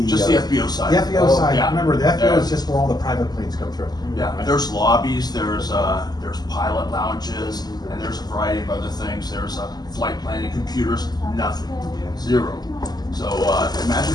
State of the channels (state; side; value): late; right; 0.20 ms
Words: FBO side. The FBO Oh, side. yeah. Remember, the FBO Yeah. is just where all the private planes come through. Yeah, right? there's lobbies, there's pilot lounges, and there's a variety of other things. There's flight planning computers, nothing, zero. So